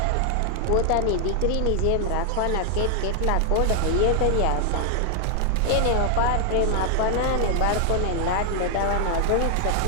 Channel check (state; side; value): different; both; correlation 0.00